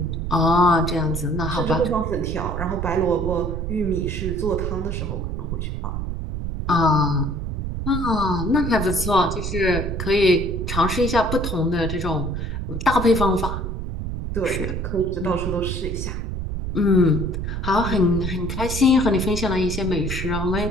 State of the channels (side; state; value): right; noise; rumble, 4 dB below the sound